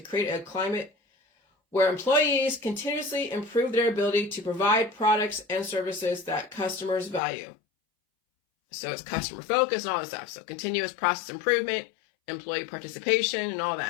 create a climate where employees continuously improve their ability to provide products and services that customers value. So it's customer focus and all this stuff. So continuous process improvement, employee participation, and all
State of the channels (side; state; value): right; drops out; at 7.2 s